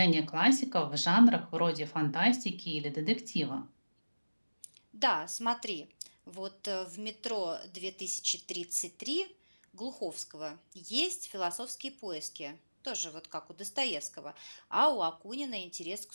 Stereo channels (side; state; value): both; inverted; correlation -1.00